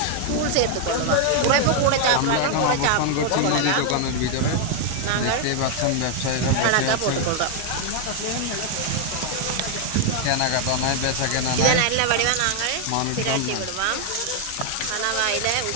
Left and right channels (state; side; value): different; both; correlation 0.00